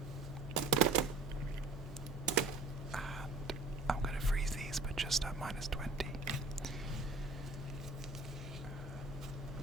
And I'm going to freeze these, but just at -20.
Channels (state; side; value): quieter; left; 3.2 dB